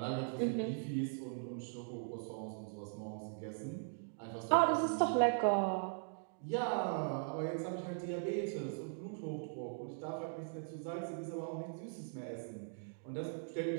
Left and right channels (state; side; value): silent; left; digital silence